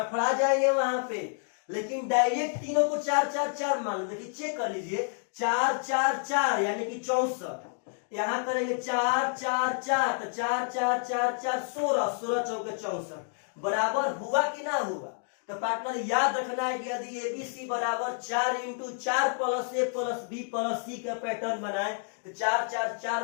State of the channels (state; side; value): silent; right; 58 dB below the other